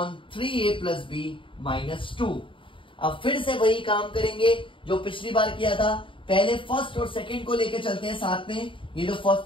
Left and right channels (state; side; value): late; right; 0.25 ms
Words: 3a plus b minus 2। अब फिर से वही काम करेंगे जो पिछली बार किया था। पहले फर्स्ट और सेकंड को लेके चलते हैं साथ में, ये जो